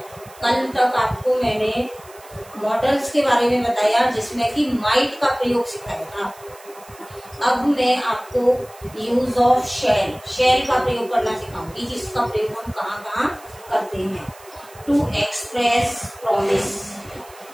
कल तक आपको मैंने मॉडल्स के बारे में बताया जिसमें कि माइट का प्रयोग सिखाया था। अब मैं आपको यूज ऑफ शेल का प्रयोग करना सिखाऊंगी, जिसका प्रयोग हम कहाँ कहाँ करते हैं। टू एक्सप्रेस प्रॉमिस,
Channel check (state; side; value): noise; right; hiss, 23 dB below the sound